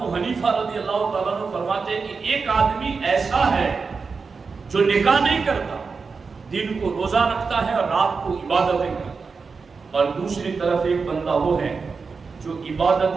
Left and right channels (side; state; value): left; quieter; 4.9 dB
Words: حنیفہ رضی اللہ تعالیٰ عنہ فرماتے ہیں کہ ایک آدمی ایسا ہے جو نکاح نہیں کرتا، دن کو روزہ رکھتا ہے اور رات کو عبادتیں کرتا ہے، اور دوسری طرف ایک بندہ وہ ہے جو